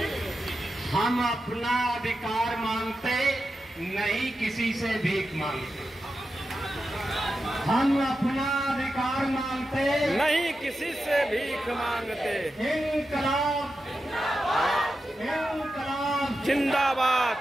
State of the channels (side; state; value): both; normal; correlation 0.90